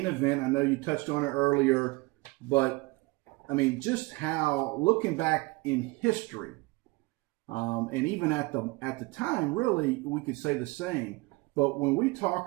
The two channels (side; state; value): left; quieter; 24.6 dB